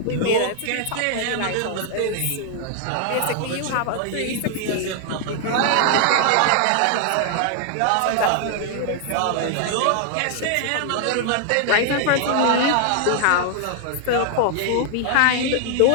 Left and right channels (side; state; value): both; different; correlation 0.00